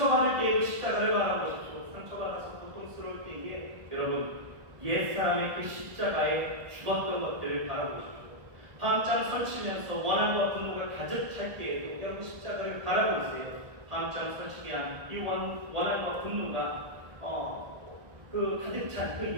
때에도 십자가를 바라보십시오. 상처받아서 고통스러울 때에 여러분, 옛사람의 그 십자가에 죽었던 것들을 바라보십시오. 밤잠 설치면서 원한과 분노가 가득 찰 때에도 여러분 십자가를 바라보세요. 밤잠 설치게 한 이 원한과 분노가 그 가득 찬 그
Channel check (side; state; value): left; late; 1.4 ms